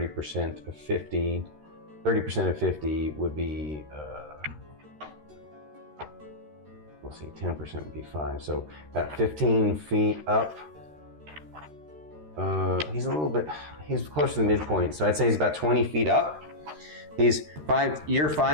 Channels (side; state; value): left; late; 13 ms